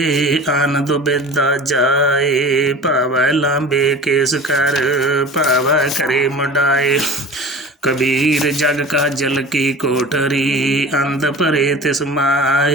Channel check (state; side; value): normal; both; correlation 0.38